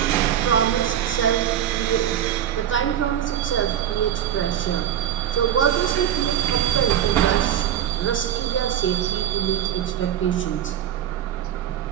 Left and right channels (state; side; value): quieter; left; 10.3 dB